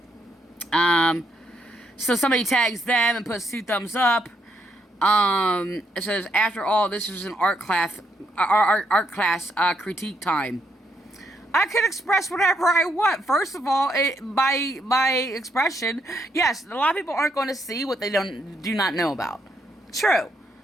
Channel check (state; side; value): normal; both; correlation 0.76